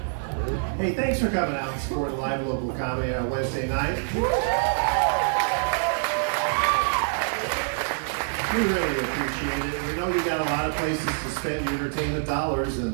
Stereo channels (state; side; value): silent; left; 61 dB below the other